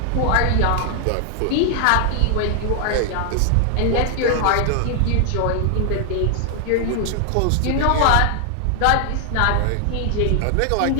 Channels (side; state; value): both; different; correlation 0.00